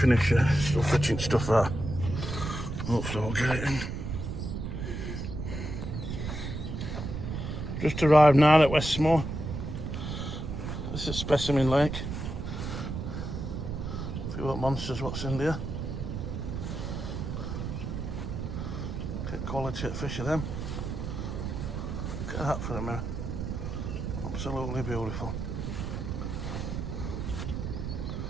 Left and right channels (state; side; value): noise; right; rumble, 4 dB below the sound